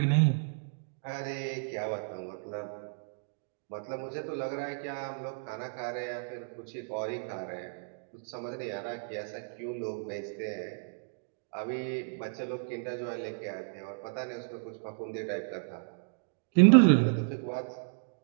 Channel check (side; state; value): left; silent; digital silence